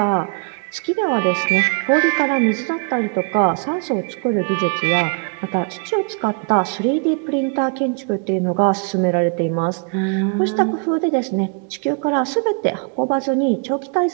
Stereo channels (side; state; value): left; quieter; 38.5 dB